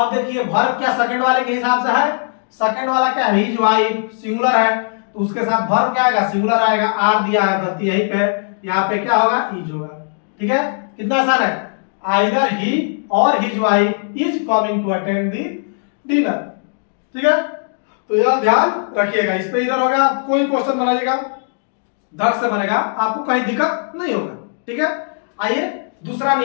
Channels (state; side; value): silent; right; digital silence